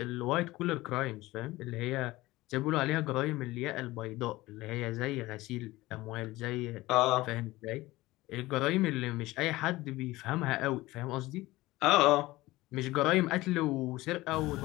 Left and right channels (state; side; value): quieter; right; 18.9 dB